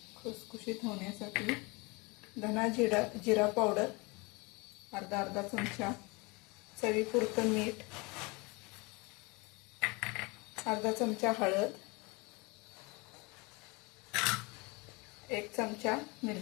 खुसखुशीत होण्यासाठी, धना जिरा पावडर अर्धा चमचा, चवीपुरतं मीठ, अर्धा चमचा हळद, 1 चमचा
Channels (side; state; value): right; quieter; 27.2 dB